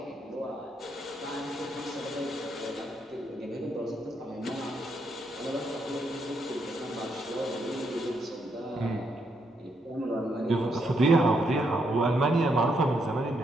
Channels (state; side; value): normal; both; correlation 0.77